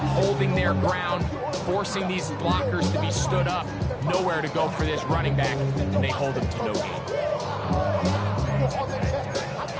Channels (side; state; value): both; identical; correlation 1.00